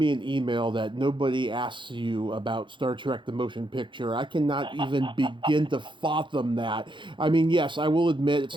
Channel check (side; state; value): left; late; 0.23 ms